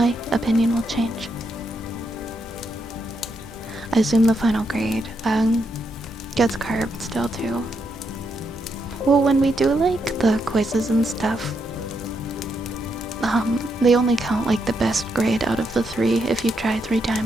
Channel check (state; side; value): normal; both; correlation 0.80